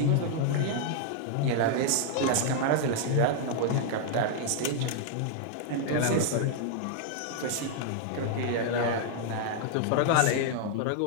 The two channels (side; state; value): both; different; correlation -0.01